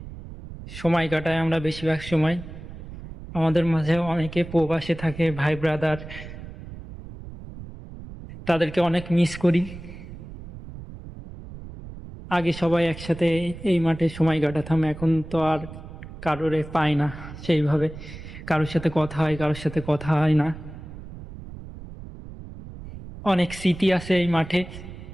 সময় কাটাই আমরা বেশিরভাগ সময়। আমাদের মাঝে অনেকে প্রবাসে থাকে, ভাই ব্রাদার, তাদেরকে অনেক মিস করি। আগে সবাই একসাথে এই মাঠে সময় কাটাতাম, এখন তো আর কারোরে পাই না সেইভাবে। কারোর সাথে কথা হয়, কারোর সাথে কথা হয় না। অনেক স্মৃতি আছে এই মাঠে।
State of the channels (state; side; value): noise; right; rumble, 13 dB below the sound